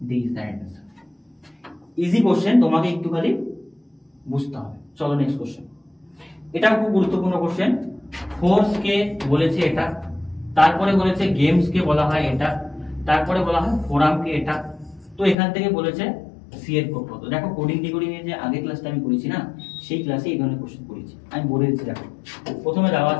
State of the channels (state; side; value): drops out; right; at 15.4 s